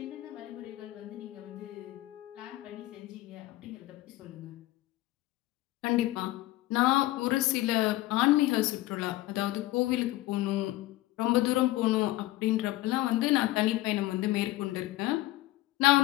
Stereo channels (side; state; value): right; quieter; 17.3 dB